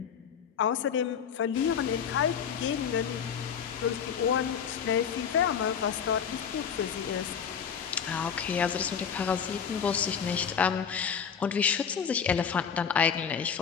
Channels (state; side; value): quieter; right; 7.4 dB